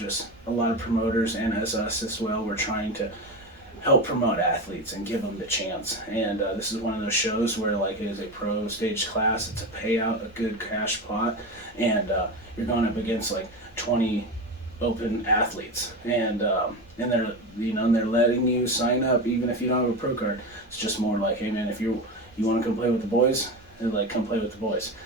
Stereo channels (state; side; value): normal; both; correlation 0.22